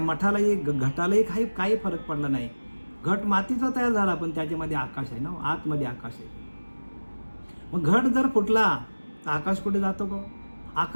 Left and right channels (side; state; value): both; inverted; correlation -1.00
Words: मठालाही घटालाही काही फरक पडला नाही. घट मातीचा तयार झाला पण त्याच्यामध्ये आकाश आहे ना, आतमध्ये आकाश आहे. मग घट जर फुटला तर आकाश कुठे जातो का?